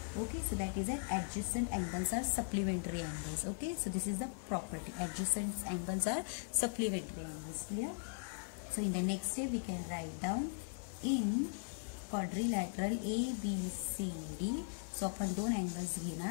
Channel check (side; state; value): right; silent; 52 dB below the other